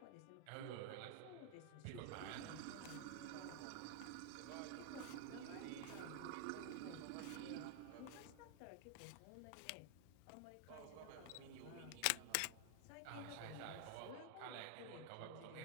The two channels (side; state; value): both; different; correlation 0.00